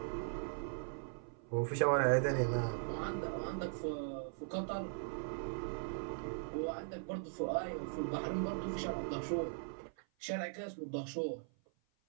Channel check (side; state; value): left; silent; 51 dB below the other